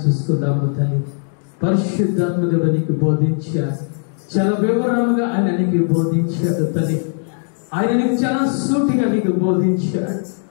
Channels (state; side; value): silent; right; 56 dB below the other